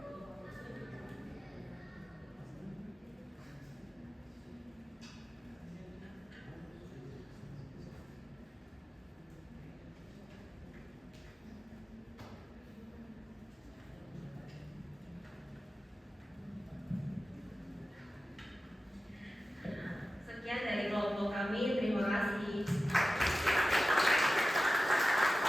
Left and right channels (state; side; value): normal; both; correlation 0.94